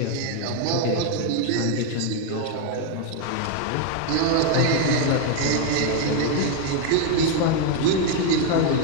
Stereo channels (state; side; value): different; both; correlation 0.01